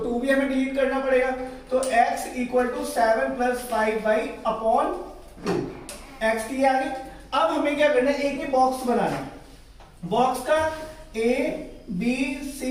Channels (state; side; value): identical; both; correlation 1.00